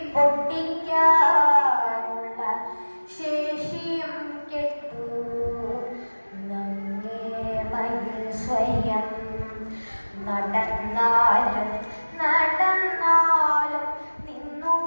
പൊട്ടിക്കാനുള്ള ശേഷിയും കെട്ടു നങ്ങേമയിൽ സ്വയം നടന്നാലും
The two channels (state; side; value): inverted; both; correlation -1.00